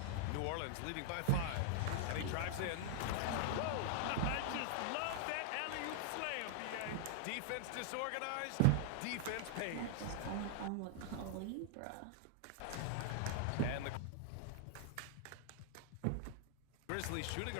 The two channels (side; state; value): both; different; correlation -0.01